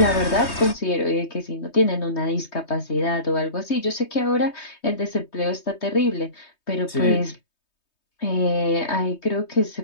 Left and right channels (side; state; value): right; late; 3.2 ms